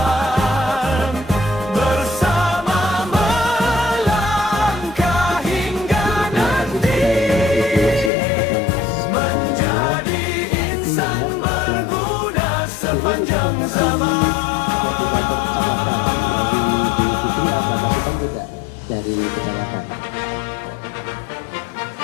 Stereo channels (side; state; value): right; drops out; at 8.1 s